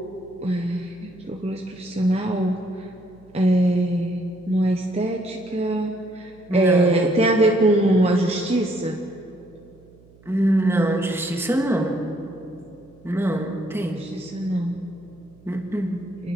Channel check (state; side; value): noise; right; hum, 27 dB below the sound